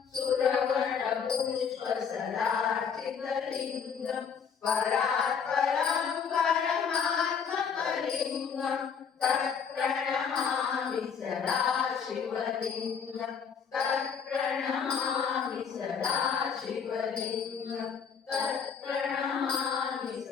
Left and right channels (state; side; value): quieter; right; 6.6 dB